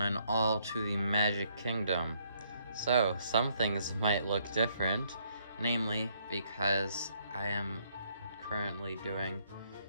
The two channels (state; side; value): inverted; both; correlation -0.70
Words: all, to the Magic Kingdom. So, some things might look different, namely because I am currently doing